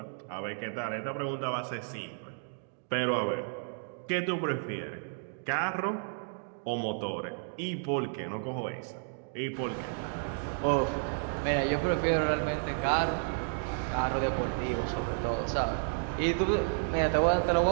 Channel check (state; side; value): silent; left; digital silence